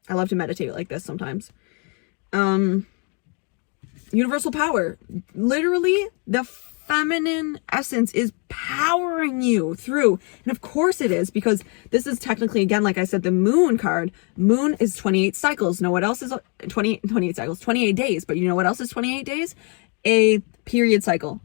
I love to meditate like this sometimes. Universal power. Literally, the feminine essence is powering you through. And of course it is, because this is technically, again, like I said, the moon card. Moon is 28 cycles. Know what else is 28 cycles? 28 days. But you know what else is 28 days? A period cycle,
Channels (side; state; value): right; quieter; 35.6 dB